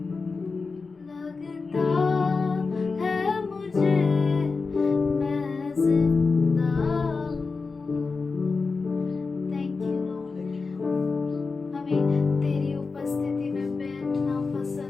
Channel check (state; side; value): quieter; right; 4.4 dB